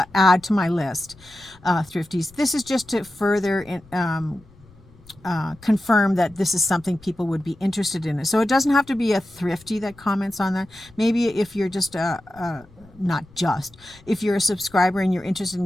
add to my list, thrifties. This is just to further confirm that this is something people would be interested in. So it doesn't have to be a thrifty that comments on that. Maybe if you're just if you're a subscriber and you're interested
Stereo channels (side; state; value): left; noise; rumble, 25 dB below the sound